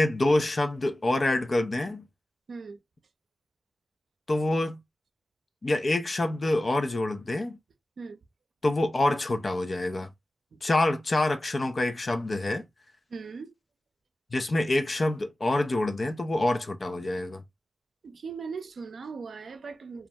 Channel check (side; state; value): both; normal; correlation 0.95